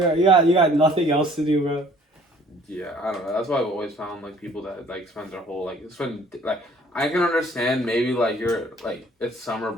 got nothing else to do, bro. Yeah, I don't know. That's why I've always found like people that like spend their whole like I can understand maybe like you're like it's summer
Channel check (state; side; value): normal; both; correlation 0.56